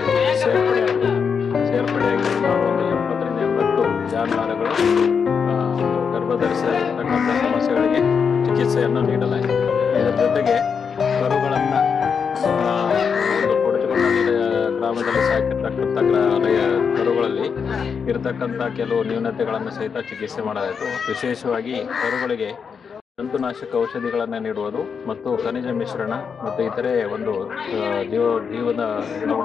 ಸೇರ್ಪಡೆಯಾಗಿ ಸುಮಾರು ಒಂದು 70ರಿಂದ 80 ಜಾನುವಾರುಗಳು ಗರ್ಭಧರಿಸತಕ್ಕಂಥ ಸಮಸ್ಯೆಗಳಿಗೆ ಚಿಕಿತ್ಸೆಯನ್ನು ನೀಡಲಾಗಿದೆ. ಇದರ ಜೊತೆಗೆ ಕರುಗಳನ್ನು ಒಂದು ಕೊಡಚಗೊಂಡಳ್ಳಿ ಗ್ರಾಮದಲ್ಲಿ ಸಾಕಿರ್ತಕ್ಕಂಥ ಕರುಗಳಲ್ಲಿ ಇರತಕ್ಕಂಥ ಕೆಲವು ನ್ಯೂನತೆಗಳನ್ನು ಸಹಿತ ಚಿಕಿತ್ಸೆ ಮಾಡಲಾಯಿತು. ವಿಶೇಷವಾಗಿ ಕರುಗಳಿಗೆ ಜಂತುನಾಶಕ ಔಷಧಿಗಳನ್ನು ನೀಡುವುದು ಮತ್ತು ಖನಿಜ ಮಿಶ್ರಣ ಮತ್ತು ಇತರೆ ಒಂದು ಜೀವದ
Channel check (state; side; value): quieter; right; 6.3 dB